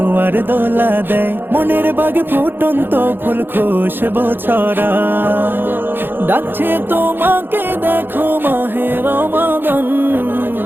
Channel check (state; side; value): late; left; 0.099 ms